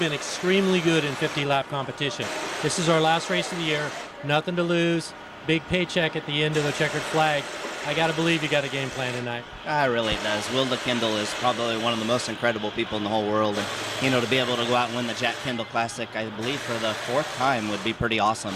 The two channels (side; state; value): both; identical; correlation 1.00